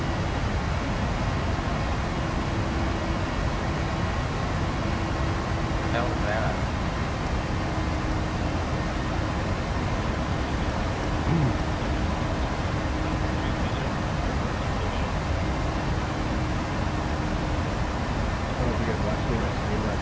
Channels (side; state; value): both; identical; correlation 1.00